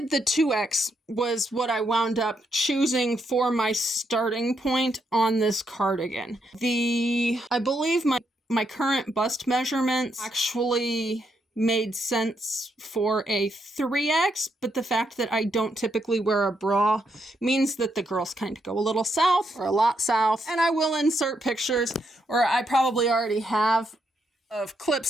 the 2X was what I wound up choosing for my starting point on this cardigan. I believe my current bust measurements actually made sense for a 3X, but the fact that I don't typically wear a bra means that the girls kind of go a little south or a lot south. And I will insert pictures, or I probably already have, of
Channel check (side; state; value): both; normal; correlation 0.78